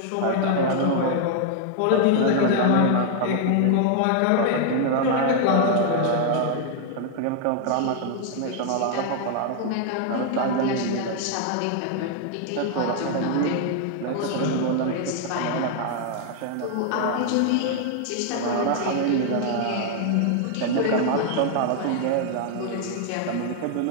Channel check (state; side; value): different; both; correlation 0.00